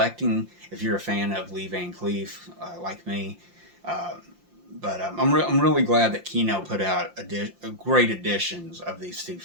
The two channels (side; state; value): left; late; 5.7 ms